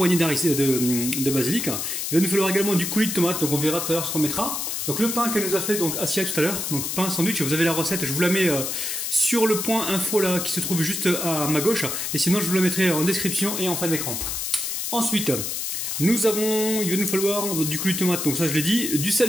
de basilic. Il va nous falloir également du coulis de tomate, donc on verra tout à l'heure ce qu'on mettra. Donc le pain qu'elle nous a fait, donc Asia tout à l'heure, donc pain sandwich, vous avez la recette, je vous la mets sur le point info là qui se trouve juste à ma gauche, et sinon je vous la mettrai en description et en fin d'écran. Ensuite, il va nous falloir du coulis de tomate, donc ça je l'ai dit, du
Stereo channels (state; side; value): noise; left; hiss, 3 dB below the sound